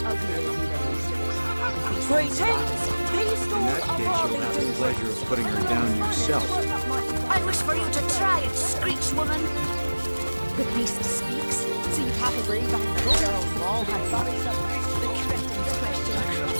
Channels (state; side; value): inverted; both; correlation -1.00